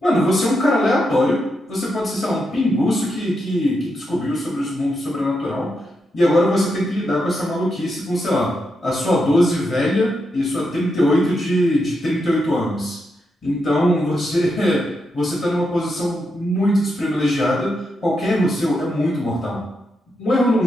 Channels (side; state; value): both; normal; correlation 0.84